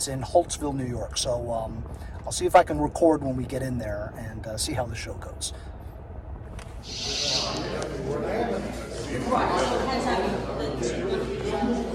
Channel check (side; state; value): both; identical; correlation 1.00